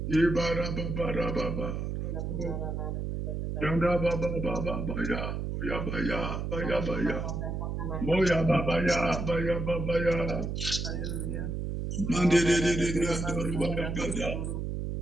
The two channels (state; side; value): noise; right; hum, 3 dB below the sound